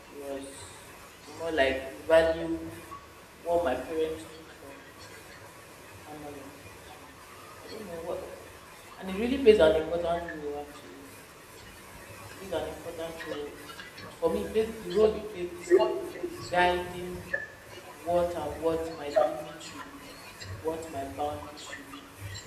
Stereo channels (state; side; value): identical; both; correlation 1.00